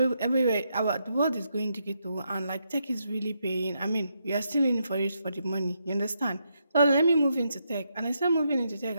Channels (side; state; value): both; inverted; correlation -0.80